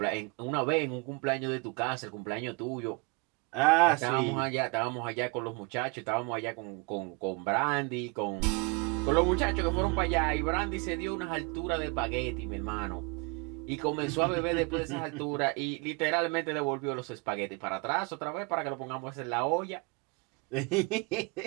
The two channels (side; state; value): left; quieter; 29.8 dB